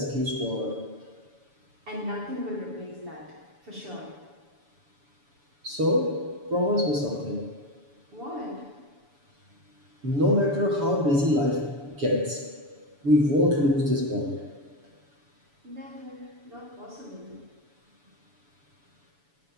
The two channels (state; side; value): late; left; 7.0 ms